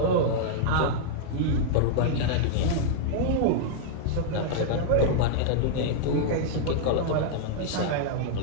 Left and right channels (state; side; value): different; both; correlation -0.01